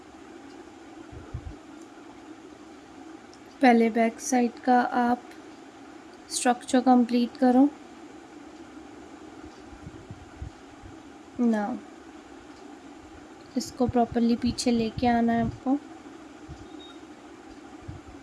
पहले बैक साइड का आप स्ट्रक्चर कंप्लीट करो. नाउ इसको प्रॉपरली पीछे लेके आना है आपको.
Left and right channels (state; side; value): identical; both; correlation 1.00